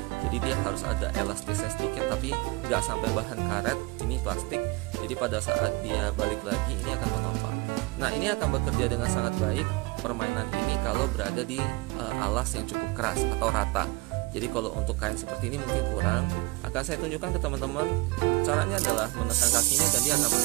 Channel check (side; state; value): left; quieter; 24.3 dB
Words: Jadi dia harus ada elastisnya sedikit, tapi nggak sampai bahan karet, ini plastik. Jadi pada saat dia balik lagi ini akan menopang. Nah, ini akan bekerja dengan sangat baik permainan ini kalau berada di alas yang cukup keras atau rata. Jadi kalau untuk kain seperti ini mungkin kurang, akan saya tunjukkan ke teman-teman. Caranya adalah menekan kakinya dan dia akan